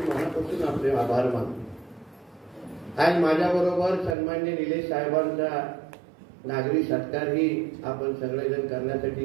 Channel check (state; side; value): drops out; left; at 4.2 s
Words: मनापासून आपले आभार मानतो. आज माझ्याबरोबर सन्मान्य निलेश साहेबांचा नागरी सत्कारही आपण सगळेजण करण्यासाठी